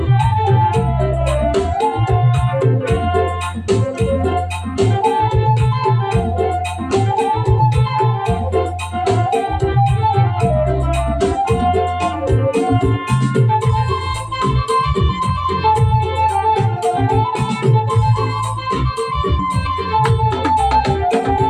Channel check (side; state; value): both; identical; correlation 1.00